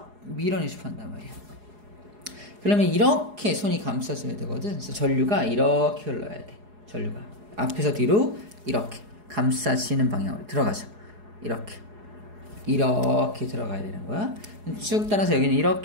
밀어내고 싶어 한단 말이야. 그러면 이렇게 손이 감싸줘야 되거든. 그래서 전류가 이렇게 흘러야 돼. 전류가 앞에서 뒤로 이렇게 감싸지는 방향으로 들어가죠. 이렇게 들어가야 되는 거야. 쭉 따라서 여기는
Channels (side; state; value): left; late; 4.8 ms